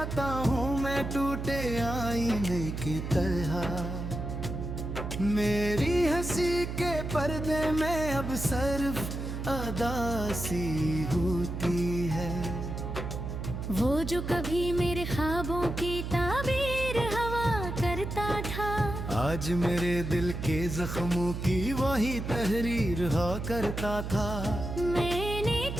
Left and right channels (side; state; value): right; noise; hum, 5 dB below the sound